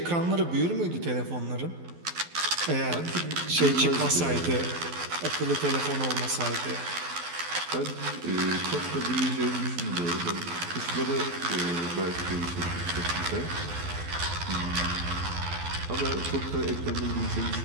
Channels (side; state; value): left; late; 12 ms